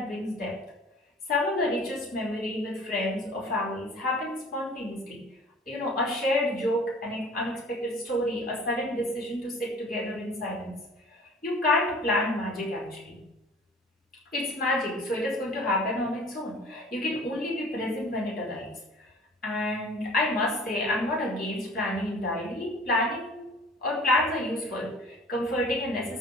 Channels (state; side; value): normal; both; correlation 0.47